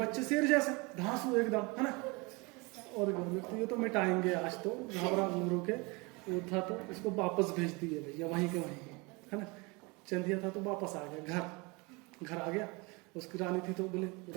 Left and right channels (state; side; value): quieter; left; 27.3 dB